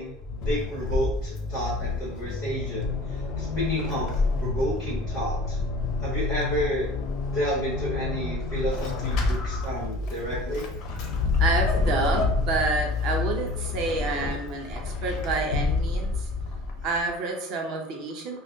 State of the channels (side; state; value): both; normal; correlation 0.43